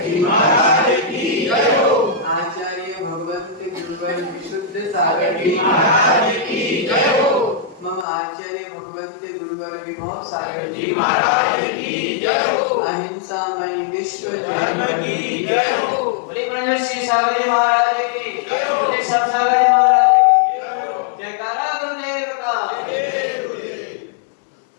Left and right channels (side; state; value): right; drops out; at 8.1 s